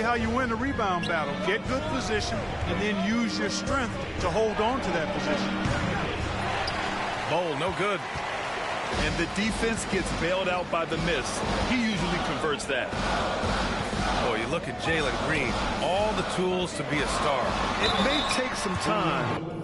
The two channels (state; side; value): identical; both; correlation 1.00